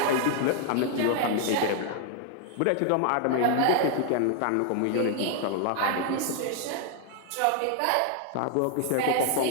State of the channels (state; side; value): different; both; correlation 0.00